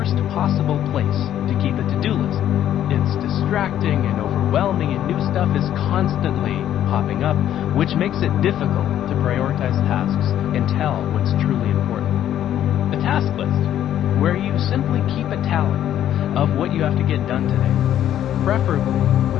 possible place to keep a to-do list. It's distracting and overwhelming, and new stuff is constantly popping up, which makes it difficult to prioritize tasks and tell what's truly important. A task list, where you simply keep a tally of what you have to get done today, preferably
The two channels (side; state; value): right; quieter; 11.2 dB